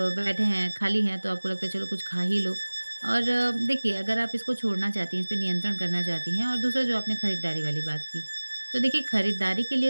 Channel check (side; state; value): both; inverted; correlation -1.00